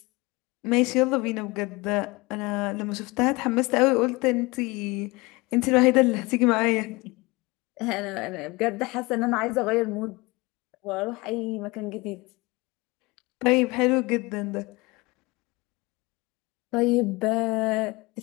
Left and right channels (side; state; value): right; quieter; 23.9 dB